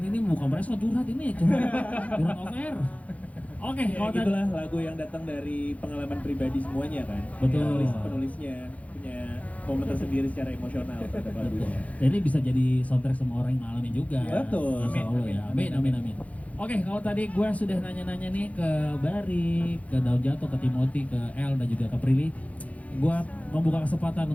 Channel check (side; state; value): right; late; 0.068 ms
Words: bukan mereka curhat ini, curhat off air. Oke, Ya, kalau tadi gitulah lagu yang datang dari pengalaman pribadi semuanya kan. Betul. Penulisnya punya momen tersendiri secara emosional terhadap lagunya. Dan ini bisa jadi soundtrack semua orang yang ngalamin juga. Betul. Insya Allah ya. Amin, amin, amin. Oke, kalau tadi gue sudah nanya-nanya nih ke Bari, ke Daun Jatuh, ke Timothy, ke El, dan juga ke Prilly. Gue membuka kesempatan